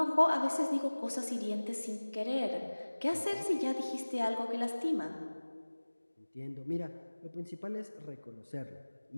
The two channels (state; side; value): inverted; both; correlation -1.00